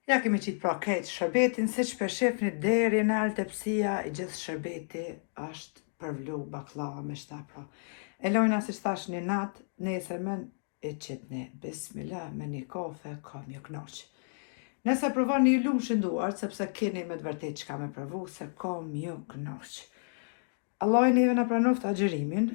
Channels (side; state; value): right; silent; digital silence